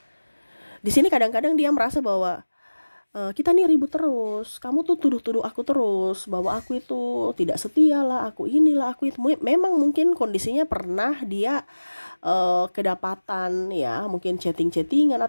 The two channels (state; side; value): inverted; both; correlation -1.00